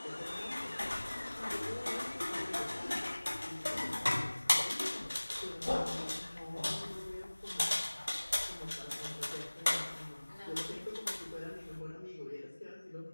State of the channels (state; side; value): inverted; both; correlation -1.00